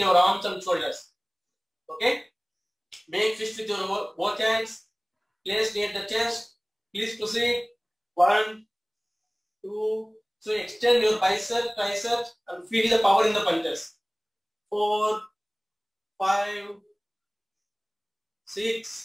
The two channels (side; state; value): both; identical; correlation 1.00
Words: arms and shoulders. Okay. Make fist with your both hands. Place near the chest. Please proceed. 1, 2. So extend your biceps, triceps, and feel the power in the punches. 4, 5,